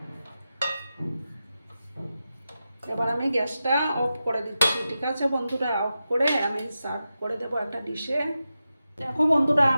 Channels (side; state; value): both; inverted; correlation -0.91